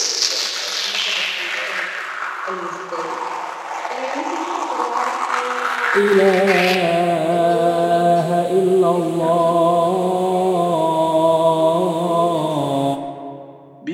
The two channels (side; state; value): both; identical; correlation 1.00